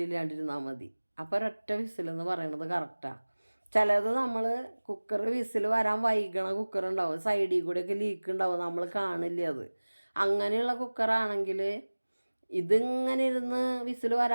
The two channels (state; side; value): inverted; both; correlation -1.00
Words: ഇല്ലാണ്ടിരുന്നാൽ മതി. അപ്പോൾ ഒരൊറ്റ വിസിലെന്ന് പറയണത് കറക്റ്റാണ്. ചിലത് നമ്മൾ കുക്കർ വിസിൽ വരാൻ വൈകണ കുക്കറുണ്ടാവും, സൈഡിൽ കൂടെയൊക്കെ ലീക്ക് ഉണ്ടാവും, നമ്മൾ കാണില്ല അത്. അങ്ങനെയുള്ള കുക്കറാണെങ്കിൽ ഇതിങ്ങനെ ഇരുന്ന് വിസിൽ